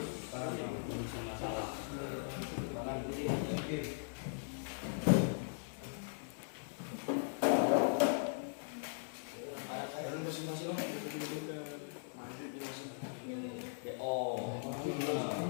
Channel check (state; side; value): silent; right; digital silence